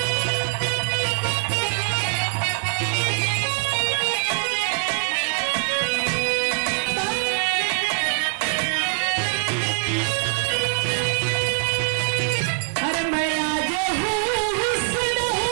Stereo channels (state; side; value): silent; left; 63 dB below the other